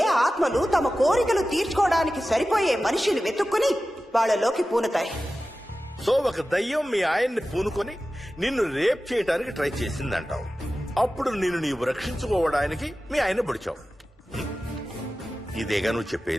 ఆత్మలు తమ కోరికలు తీర్చుకోవడానికి సరిపోయే మనిషిని వెతుక్కుని వాళ్ళలోకి పూనుతాయి. సో ఒక దయ్యం మీ ఆయన్ని పూనుకొని నిన్ను రేప్ చేయడానికి ట్రై చేసిందంటావు. అప్పుడు నిన్ను నీవు రక్షించుకోవడానికి మీ ఆయన పొడిచావు. ఇదేగా నువ్వు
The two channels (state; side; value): normal; both; correlation 0.95